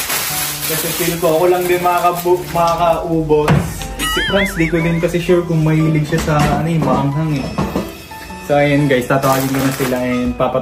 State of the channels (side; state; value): both; identical; correlation 1.00